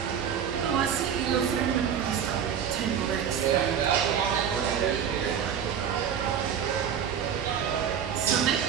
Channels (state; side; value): quieter; left; 8.2 dB